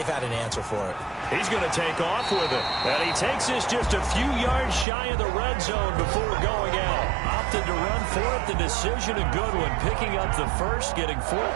had an answer for it. He's going to take off with it. And he takes this just a few yards shy of the red zone before going out. Opted to run for it. The decision a good one. Picking up the first, getting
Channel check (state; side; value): drops out; left; at 4.9 s